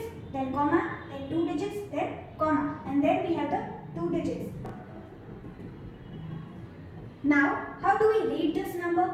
then comma, then 2 digits, then comma, and then we have the 2 digits. Now, how do we read this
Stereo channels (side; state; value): both; identical; correlation 1.00